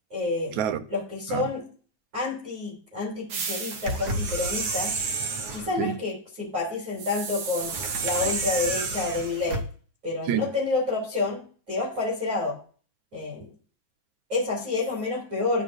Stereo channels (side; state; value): left; late; 9.4 ms